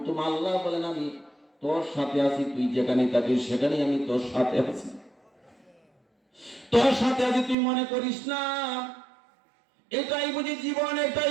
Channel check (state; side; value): drops out; left; at 7.6 s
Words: আল্লাহ বলেন আমি তোর সাথে আছি, তুই যেখানে থাকিস সেখানে আমি তোর সাথে আছি। তোর সাথে আছি, তুই মনে করিস না এটাই বুঝি জীবন,